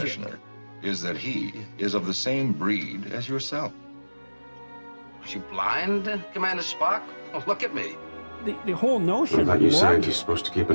is that he is of the same breed as yourself. Are you blind, Commander Spock? Oh, look at me. The whole notion of you logic. scientists supposed to keep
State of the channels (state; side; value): inverted; both; correlation -1.00